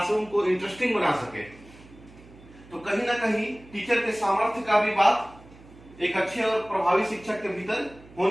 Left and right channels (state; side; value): noise; right; hum, 22 dB below the sound